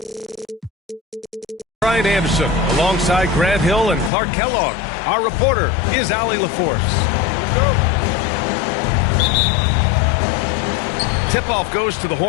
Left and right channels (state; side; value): drops out; right; at 4.1 s